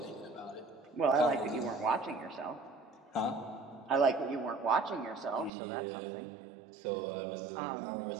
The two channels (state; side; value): drops out; left; at 5.5 s